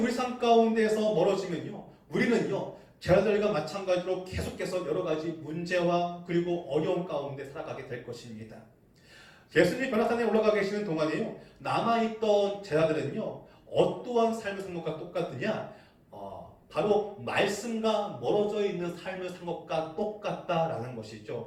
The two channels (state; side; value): identical; both; correlation 1.00